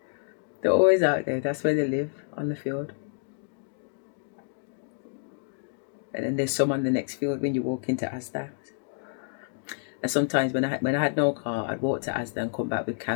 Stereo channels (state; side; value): silent; right; digital silence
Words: They're always out there. That's where they live, on the field. And then there's some on the next field when you walk into Asda. And sometimes when I had no car, I'd walk to Asda and come back with